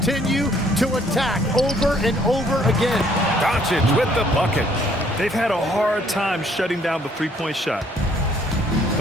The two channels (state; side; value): normal; both; correlation 0.64